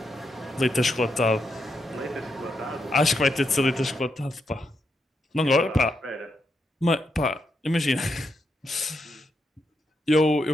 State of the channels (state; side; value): normal; both; correlation 0.82